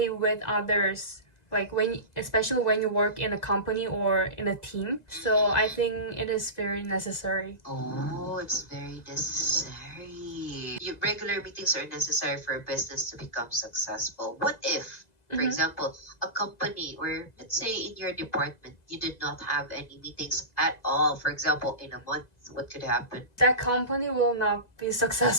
with others, like especially when you work in a company or in a team. So I think it is very necessary. Oh, it's very necessary. Regular meetings are necessary for a business to become successful. What if, for example, a company, or let's say in your department, you did not have any meetings at all? For example, in a month, what could happen? That company will not be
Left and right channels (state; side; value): late; right; 2.0 ms